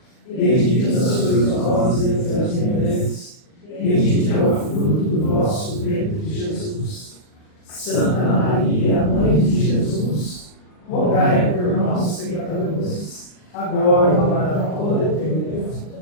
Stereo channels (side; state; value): right; late; 39 ms